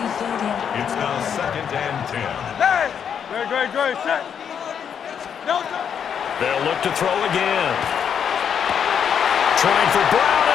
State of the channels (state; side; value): quieter; right; 7.8 dB